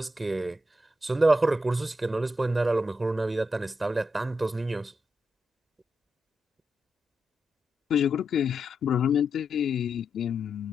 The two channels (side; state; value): both; normal; correlation 0.85